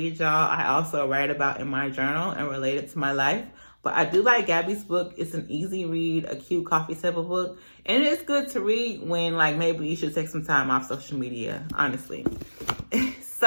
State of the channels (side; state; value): both; inverted; correlation -1.00